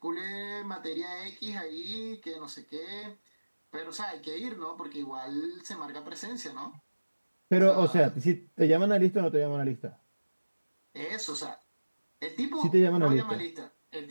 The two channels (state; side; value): inverted; both; correlation -1.00